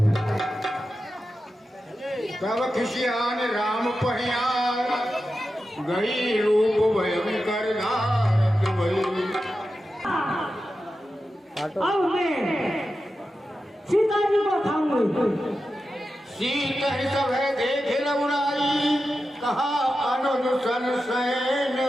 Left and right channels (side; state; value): both; normal; correlation 0.91